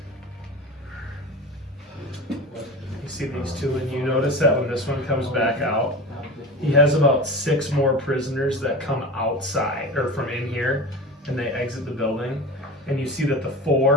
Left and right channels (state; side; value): normal; both; correlation 0.31